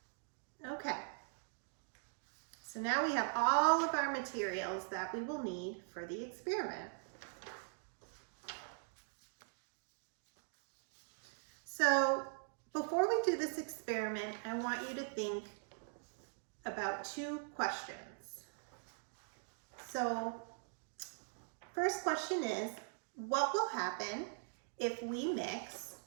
Okay. So now we have all of our materials that we will need for the experiment. So before we do this experiment, I want you to think about two questions. So first question is, what will happen if we mix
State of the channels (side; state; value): left; silent; digital silence